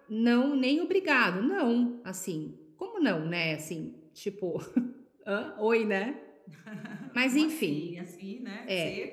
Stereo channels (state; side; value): identical; both; correlation 1.00